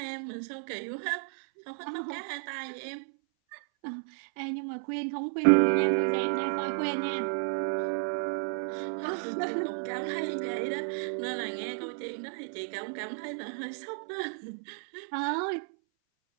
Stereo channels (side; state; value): left; silent; 56 dB below the other